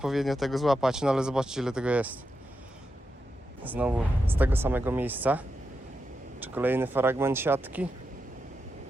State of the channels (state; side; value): normal; both; correlation 0.87